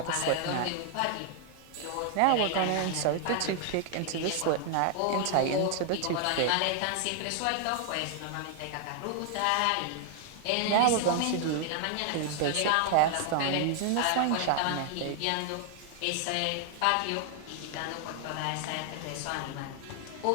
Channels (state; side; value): different; both; correlation 0.00